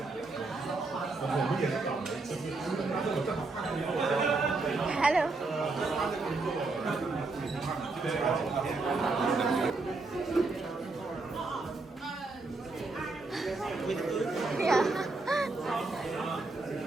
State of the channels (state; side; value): quieter; left; 3.5 dB